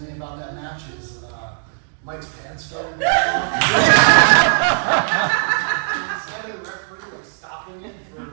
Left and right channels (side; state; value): left; silent; digital silence